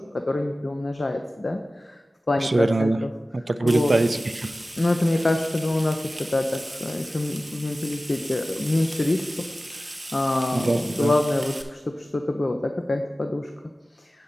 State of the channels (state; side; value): normal; both; correlation 0.96